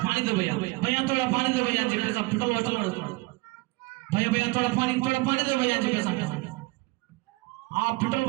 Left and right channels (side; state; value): left; quieter; 23.5 dB